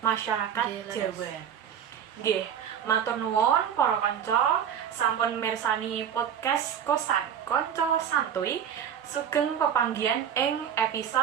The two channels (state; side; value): quieter; left; 8.6 dB